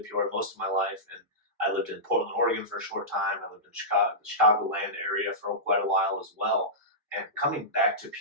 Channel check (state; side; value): normal; both; correlation -0.15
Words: Peoria most of my life, and I lived in Portland, Oregon for a short time. I lived in the Chicagoland area for quite a while as well. And coming back to